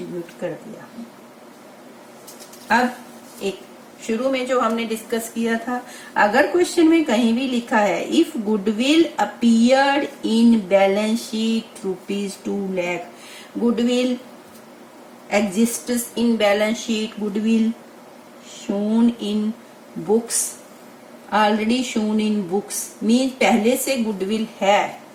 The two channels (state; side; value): identical; both; correlation 1.00